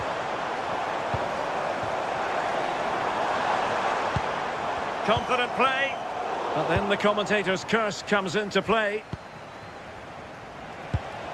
Confident play. But then the commentator's curse comes into play.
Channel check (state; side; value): identical; both; correlation 1.00